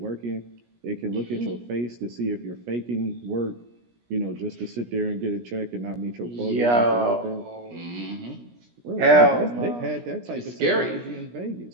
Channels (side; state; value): left; late; 17 ms